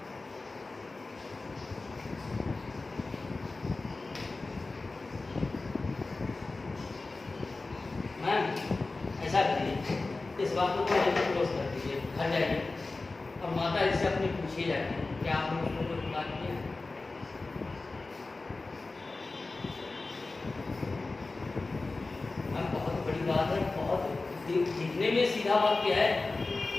मैम ऐसा करिए, इस बात को क्लोज कर दीजिए, घर जाइए और माता जी से अपनी पूछिए जाके क्या आपने उसको कोई बात किया है? बहुत बड़ी बात है, बहुत दिखने में सीधा वाक्य है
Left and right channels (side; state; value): right; quieter; 3.5 dB